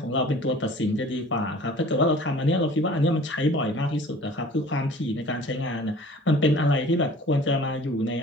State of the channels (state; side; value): normal; both; correlation 0.47